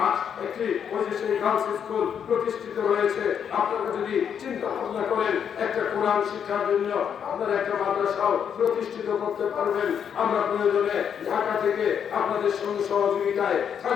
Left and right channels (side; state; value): right; quieter; 8.0 dB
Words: একটি ওই যে সেই গার্লস স্কুল প্রতিষ্ঠিত হয়েছে। আপনারা যদি চিন্তা ভাবনা করেন একটা কোরআন শিক্ষার জন্য আপনারা একটা মাদ্রাসাও প্রতিষ্ঠিত করতে পারবেন। আমরা প্রয়োজনে ঢাকা থেকে আপনাদের সঙ্গে সহযোগিতায়